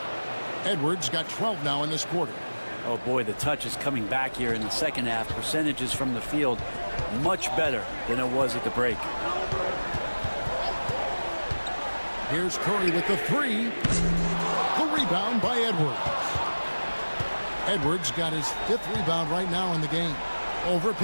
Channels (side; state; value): both; inverted; correlation -1.00